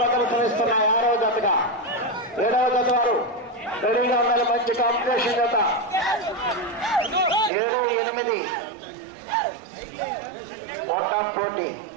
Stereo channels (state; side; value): drops out; left; at 7.5 s